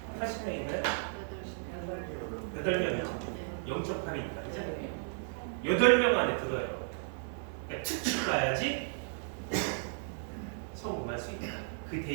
80명인가요? 8명이죠. 0.8이니까 그죠? 8명 안에 들어요. 그러니까 특집 가야지 성공할 수 있다. 그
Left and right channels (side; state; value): left; silent; digital silence